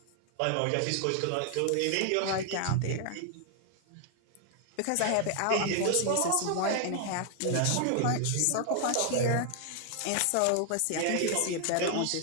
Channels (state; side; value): different; both; correlation 0.00